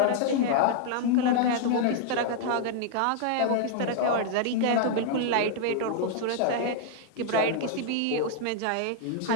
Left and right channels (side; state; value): both; different; correlation 0.00